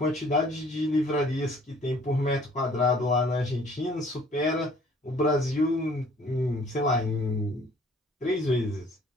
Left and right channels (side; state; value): both; normal; correlation 0.56